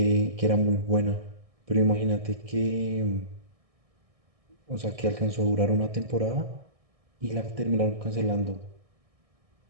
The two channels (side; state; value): left; late; 1.6 ms